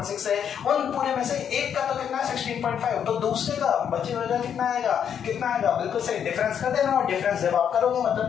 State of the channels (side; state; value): right; quieter; 8.3 dB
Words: है, उन पूरे में से एक का तो कितना है 16.5, तो दूसरे का बचे हुए का कितना आएगा, बिल्कुल सही, डिफरेंस कर देना, और डिफरेंस जब आप करोगे मतलब